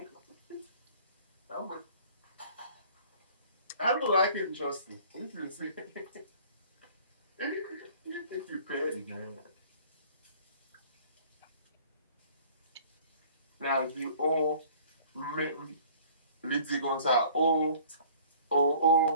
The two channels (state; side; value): inverted; both; correlation -0.51